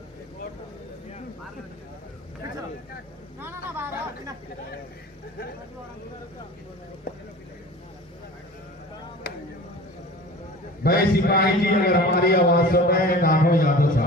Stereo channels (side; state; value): both; normal; correlation 0.39